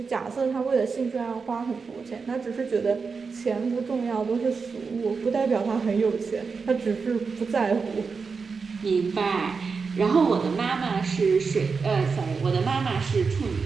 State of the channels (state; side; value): quieter; left; 5.0 dB